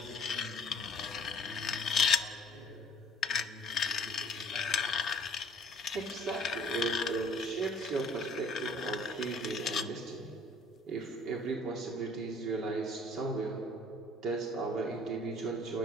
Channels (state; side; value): normal; both; correlation 0.54